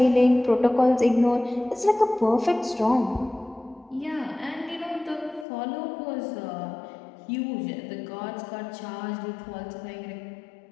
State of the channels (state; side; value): drops out; right; at 5.5 s